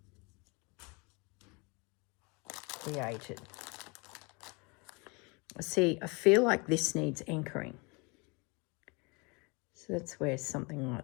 created. See, I feel like this needs anchoring. So that's where something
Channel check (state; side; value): quieter; right; 29.6 dB